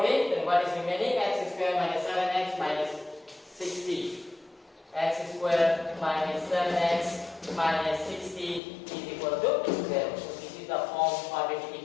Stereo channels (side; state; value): right; drops out; at 8.6 s